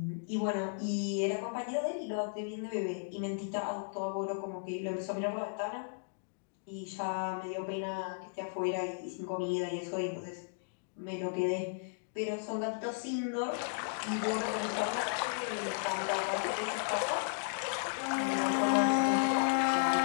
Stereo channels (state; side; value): silent; right; digital silence